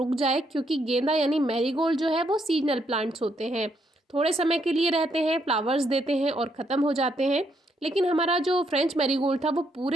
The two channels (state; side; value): normal; both; correlation 0.75